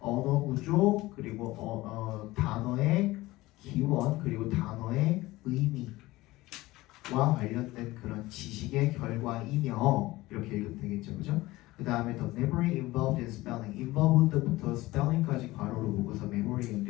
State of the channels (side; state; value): right; quieter; 18.9 dB